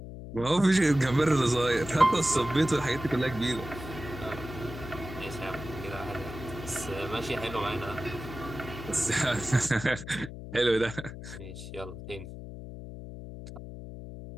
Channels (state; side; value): noise; left; hum, 11 dB below the sound